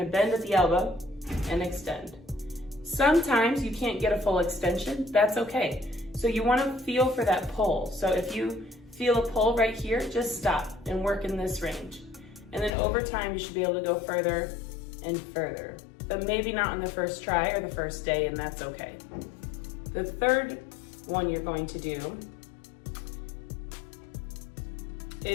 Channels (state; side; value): drops out; right; at 12.8 s